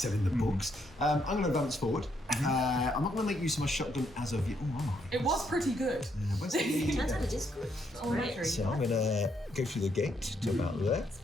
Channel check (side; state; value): both; normal; correlation 0.75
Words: in the books. I'm going to advance forward. I'm not going to make use of my shotgun as of yet. Oh, am I? It was pretty good. Where's the- Turns out it is good. Oh, Right. So I'm going to go through the gate to about there.